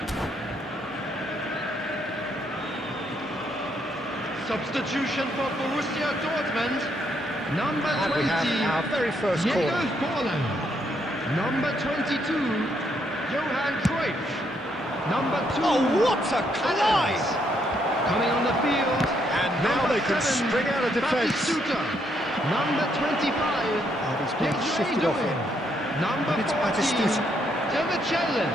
Substitution for Borussia Dortmund. Number 20, And we have our very first Diego corner. Forlan. Number 22, Johan Cruyff. Number 2, Oh, what a collide! Adams. Coming on the field. And now number they can 7, spring out of defence. Batistuta. Number 25, And he's been shifted off Doing. him. Number And it's 14, Batistuta.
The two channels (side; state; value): both; normal; correlation 0.74